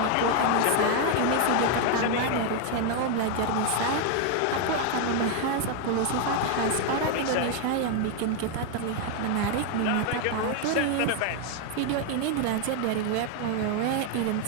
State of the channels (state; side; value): different; both; correlation 0.01